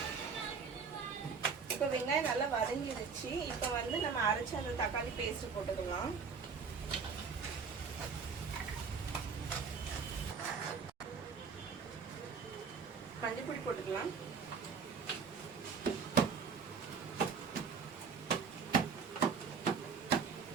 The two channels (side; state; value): left; quieter; 5.5 dB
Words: இப்போ வெங்காயம் நல்லா வதங்கிடுச்சு. இப்போ நம்ம அரைச்ச அந்த தக்காளி பேஸ்ட் போட்டுக்கலாம். மஞ்சள் பொடி போட்டுக்கலாம்.